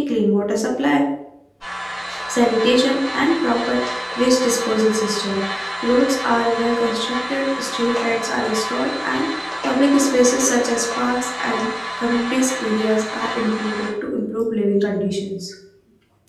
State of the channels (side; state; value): both; identical; correlation 1.00